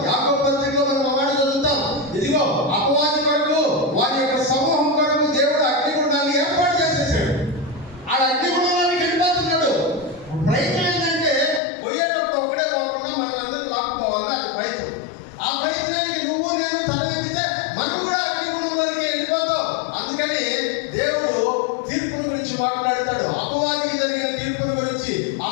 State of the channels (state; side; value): drops out; right; at 11.6 s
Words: యాకోబు పత్రికలో మనం ఆ మాట చదువుతాం. ఇదిగో అపవాది కొరకు, వారి యొక్క సమూహం కొరకు దేవుడు అగ్నిగుండాన్ని ఏర్పాటు చేసేసాడు. ఆ అగ్నిగుండానికి వెళ్ళిపోతున్నాడు. ప్రయత్నం ఏంటంటే పోయేటప్పుడు ఒకడే పోకుండా మనల్ని అందరూ లాక్కుపోవాలి. అది ప్రయత్నం. ఆ ప్రయత్నానికి నువ్వు నేను తలెత్తితే మనం కూడా అగ్నిగుండంలోకి వెళ్ళిపోతాం. అందుకని దేవుడు తీర్పుల గురించి మాట్లాడతాడు. అపవాదికి జరిగిన తీర్పుల గురించి,